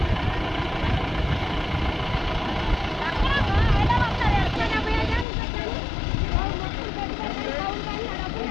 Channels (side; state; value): right; drops out; at 5.2 s